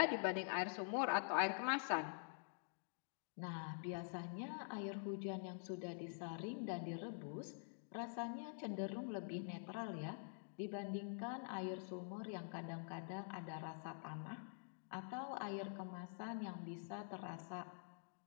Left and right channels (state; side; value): silent; right; digital silence